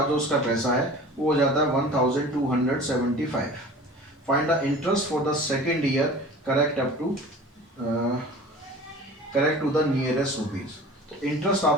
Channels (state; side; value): normal; both; correlation 0.41